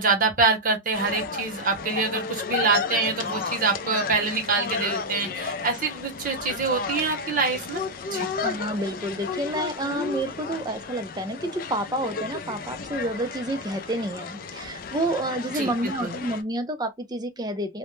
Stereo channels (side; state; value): both; normal; correlation 0.07